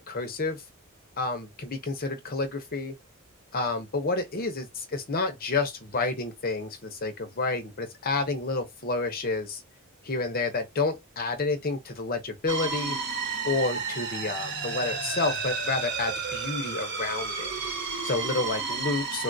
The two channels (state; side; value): normal; both; correlation -0.02